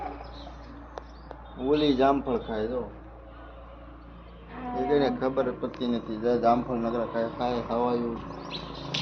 ઓલી જામફળ ખાય તો એને ખબર પડતી નથી. જામફળ નકરા ખાય ખાય ખવાયું.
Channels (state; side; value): identical; both; correlation 1.00